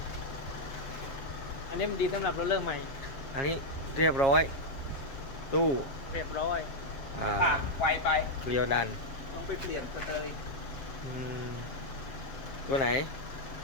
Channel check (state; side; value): late; right; 7.4 ms